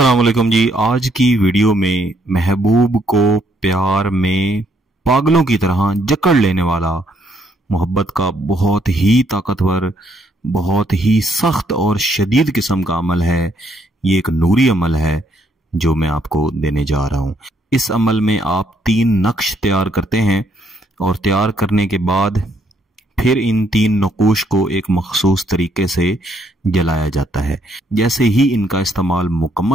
वालेकुम जी। आज की वीडियो में महबूब को प्यार में पागलों की तरह जकड़ लेने वाला मोहब्बत का बहुत ही ताकतवर, बहुत ही सख्त और शदीद किस्म का अमल है। ये एक नूरी अमल है जो मैं आपको देने जा रहा हूं। इस अमल में आप 3 नक्श तैयार करते हैं और तैयार करने के बाद फिर इन 3 नकूश को एक मखसूस तरीके से जलाया जाता है। जैसे ही इनका इस्तेमाल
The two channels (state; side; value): normal; both; correlation 0.71